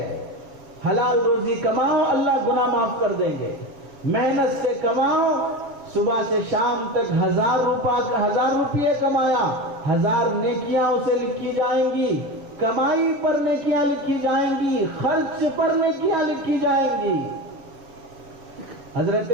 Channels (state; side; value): late; left; 7.2 ms